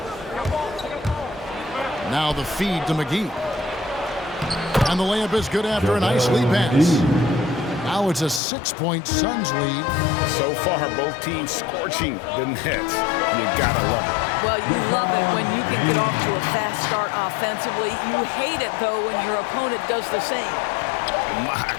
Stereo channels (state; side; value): drops out; right; at 8.4 s